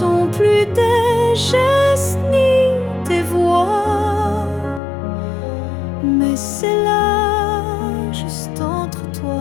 plus des gestes ni des voix, mais c'est là, juste entre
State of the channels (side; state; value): right; drops out; at 4.8 s